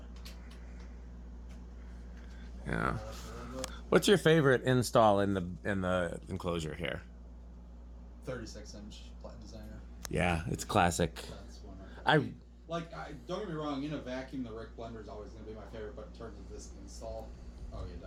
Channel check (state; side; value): identical; both; correlation 1.00